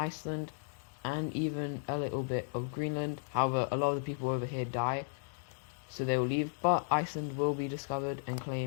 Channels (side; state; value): right; silent; digital silence